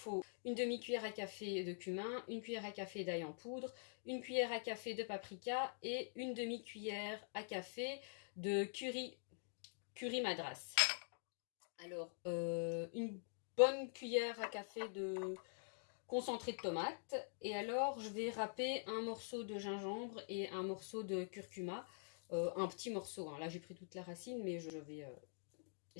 une demi-cuillère à café de cumin, une cuillère à café d'ail en poudre, une cuillère à café de paprika et une demi-cuillère à café de curry madras. Alors, une bonne cuillère à café de concentré de tomate. Et alors, je vais râper un morceau de gingembre et un morceau de curcuma. Un petit morceau, hein. Là, j'ai pris toute la racine, mais je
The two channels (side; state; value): right; silent; digital silence